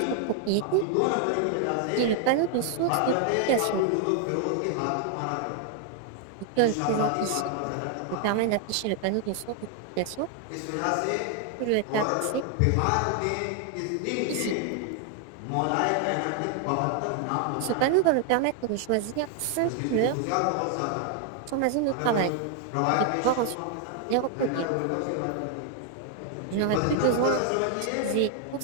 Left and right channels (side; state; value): both; different; correlation 0.00